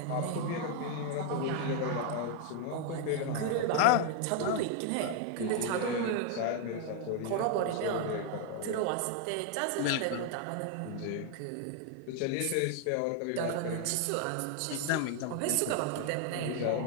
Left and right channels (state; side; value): different; both; correlation 0.01